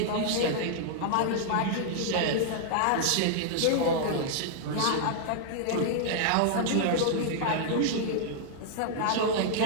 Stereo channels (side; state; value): both; different; correlation -0.01